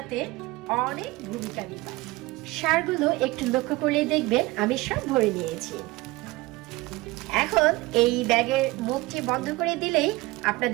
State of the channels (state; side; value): quieter; left; 21.1 dB